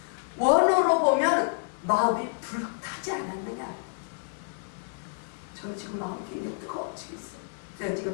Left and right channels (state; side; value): silent; right; 59 dB below the other